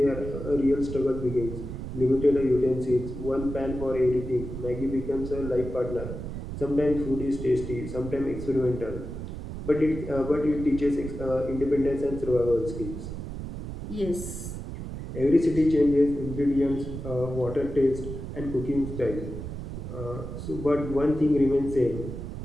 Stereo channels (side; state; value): right; noise; rumble, 8 dB below the sound